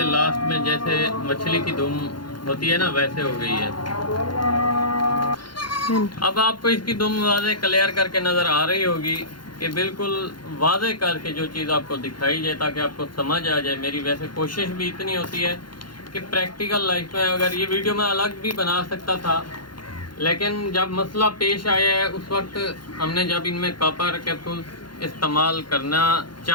लास्ट में, जैसे मछली की दुम होती है ना, वैसे हो गई है। अब आपको इसकी दुम वाज़े क्लियर करके नज़र आ रही होगी कि बिल्कुल वाज़े करके जो चीज़ आपको दिखाई जाए ताकि आपको समझ आ जाए। मेरी वैसे कोशिश भी इतनी होती है कि प्रैक्टिकल लाइफ में, अगर ये वीडियो मैं अलग भी बना सकता था, लेकिन जब मसला पेश आया है उस वक्त हमने जब इनमें कापर कैप्सूल इस्तेमाल करना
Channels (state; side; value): late; right; 0.72 ms